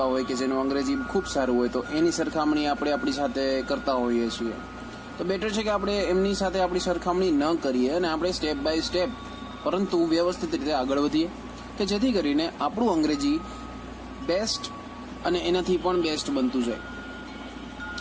હોય કે જેનું અંગ્રેજી ખૂબ સારું હોય, તો એની સરખામણી આપણે આપણી સાથે કરતા હોઈએ છીએ. તો બેટર છે કે આપણે એમની સાથે આપણી સરખામણી ન કરીએ અને આપણે સ્ટેપ બાય સ્ટેપ પરંતુ વ્યવસ્થિત રીતે આગળ વધીએ કે જેથી કરીને આપણું અંગ્રેજી બેસ્ટ અને એનાથી પણ બેસ્ટ બનતું જાય.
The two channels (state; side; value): identical; both; correlation 1.00